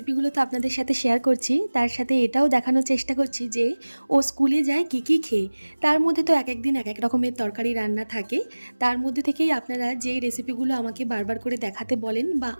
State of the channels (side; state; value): both; inverted; correlation -1.00